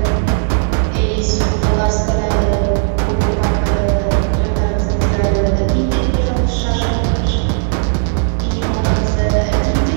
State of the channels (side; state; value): left; silent; 62 dB below the other